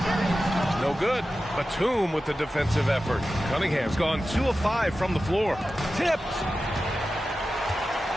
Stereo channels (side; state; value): both; normal; correlation 0.94